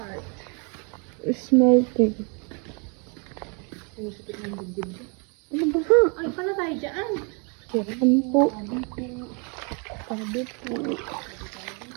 It's melting. Sumisikip ng dibdib. Ano ba, ha? Ay, pala tayo dyan. Kailan po? Sabi po.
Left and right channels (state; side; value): quieter; left; 35.2 dB